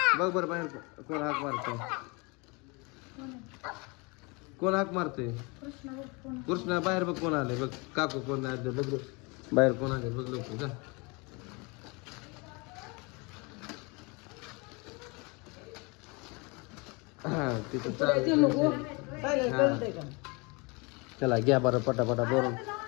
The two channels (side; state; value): right; quieter; 28.7 dB